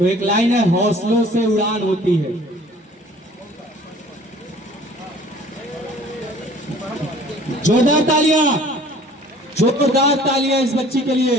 एक लाइन है, हौसलों से उड़ान होती है। जोरदार तालियां, जोरदार तालियां इस बच्ची के लिए।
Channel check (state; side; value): normal; both; correlation 0.51